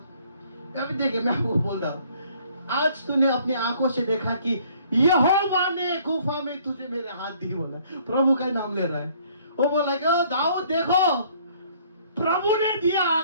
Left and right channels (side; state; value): both; inverted; correlation -0.60